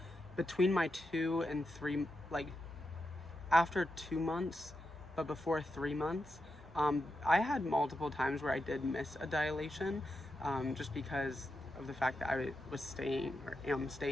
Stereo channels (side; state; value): both; normal; correlation 0.87